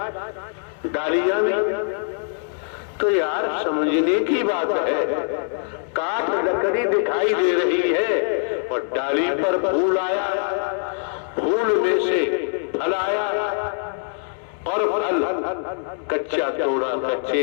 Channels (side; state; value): right; silent; digital silence